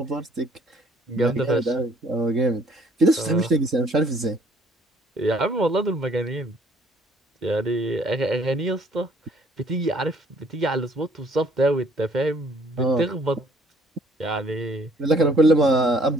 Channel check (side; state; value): both; normal; correlation 0.61